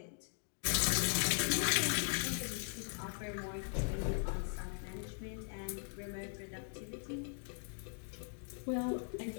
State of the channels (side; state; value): right; silent; 51 dB below the other